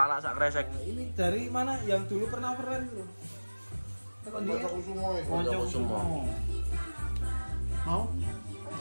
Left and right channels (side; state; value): both; inverted; correlation -1.00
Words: sak kresek. Ini dari mana? Yang dulu pernah keren tuh. Tekan dia. Aku semua ya. Konco semua. Mau?